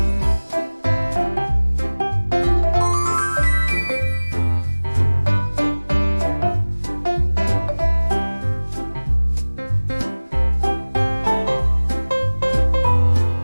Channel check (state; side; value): inverted; both; correlation -1.00